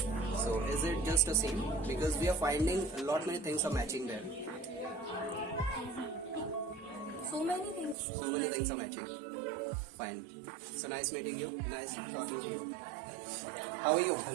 sir. So is it just the same? Because we are finding a lot many things are matching there. So many things. So many things are matching. Fine. So nice meeting you. Nice talking to you. How are you?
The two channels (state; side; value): drops out; left; at 8.0 s